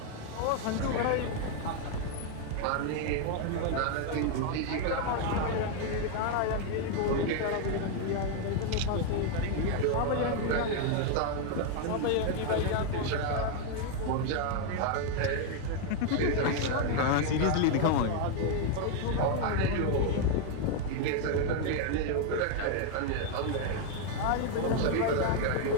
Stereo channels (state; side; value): different; both; correlation 0.01